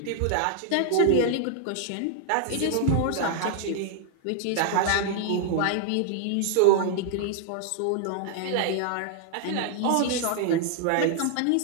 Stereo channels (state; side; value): different; both; correlation -0.01